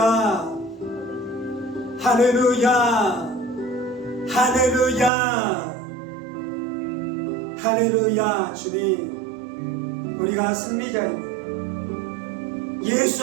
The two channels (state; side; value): drops out; left; at 5.1 s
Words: 할렐루야, 할렐루야, 할렐루야. 주님, 우리가 승리자입니다. 예수